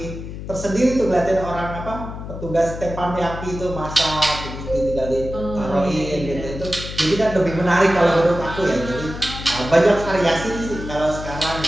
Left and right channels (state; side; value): noise; left; hum, 9 dB below the sound